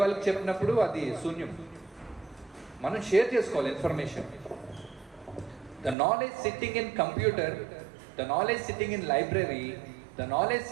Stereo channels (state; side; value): drops out; left; at 6.0 s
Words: వాళ్ళకి చెప్పినప్పుడు అది శూన్యం. మనం షేర్ చేసుకోవాలి information. The knowledge sitting in computer, the knowledge sitting in library, the knowledge